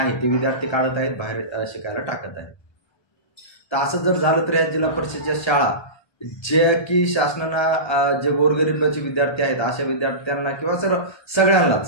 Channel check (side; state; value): right; late; 1.2 ms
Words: ते विद्यार्थी काढत आहेत, बाहेर शिकायला टाकत आहेत। तर असं जर झालं तर या जिल्हा परिषदच्या शाळा जे की शासनानं जे गोरगरिबाचे विद्यार्थी आहेत अशा विद्यार्थ्यांना किंवा